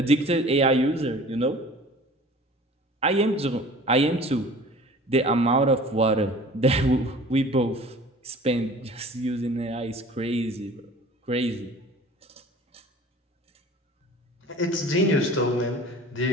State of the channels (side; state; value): both; normal; correlation 0.45